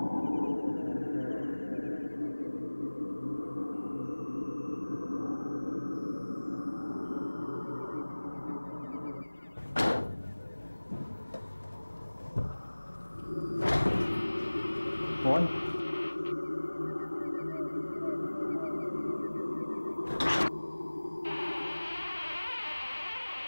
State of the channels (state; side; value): inverted; both; correlation -1.00